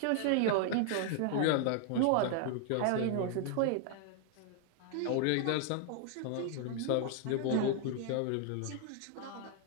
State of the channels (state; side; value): different; both; correlation 0.00